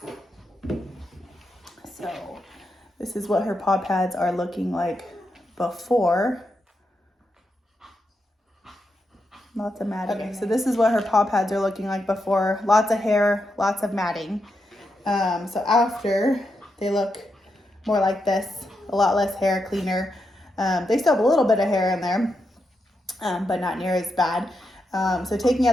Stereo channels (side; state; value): both; normal; correlation 0.84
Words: So this is what her paw pads are looking like before. Lots of matting. Okay, so this is what her paw pads are looking like before. Lots of hair, lots of matting. So after, they look more like this. A lot less hair, cleaner. They still have a little bit of hair in there, but not near as bad. So taking